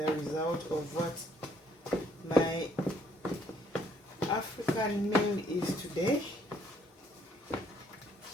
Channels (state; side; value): normal; both; correlation 0.66